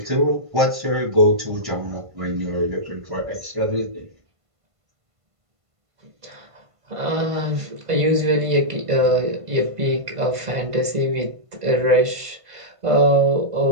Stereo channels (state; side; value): late; left; 1.5 ms